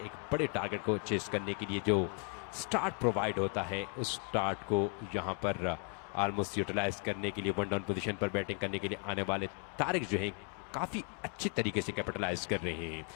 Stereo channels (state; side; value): quieter; right; 37.0 dB